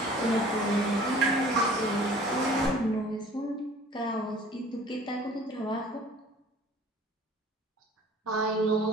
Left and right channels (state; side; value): normal; both; correlation 0.49